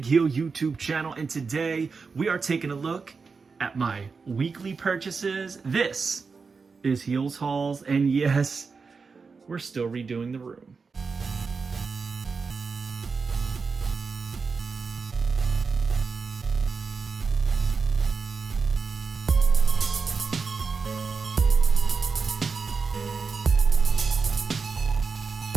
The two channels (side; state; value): left; quieter; 4.9 dB